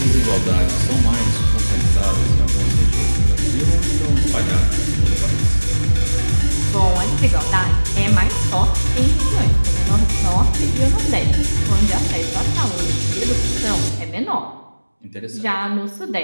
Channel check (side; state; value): both; inverted; correlation -1.00